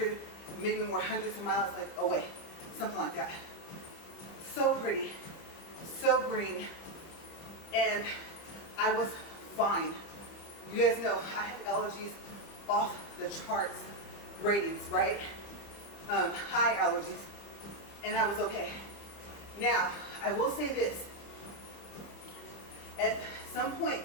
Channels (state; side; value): late; right; 30 ms